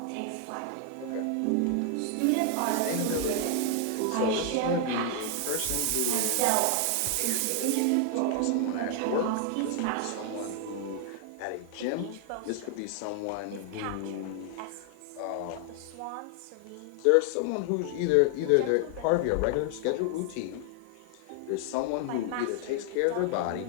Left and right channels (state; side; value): different; both; correlation 0.00